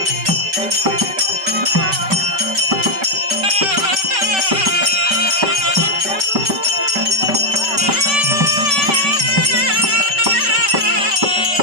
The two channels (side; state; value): left; late; 5.2 ms